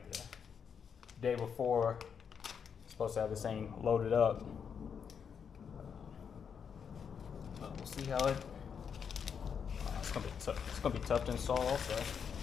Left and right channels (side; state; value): right; quieter; 7.0 dB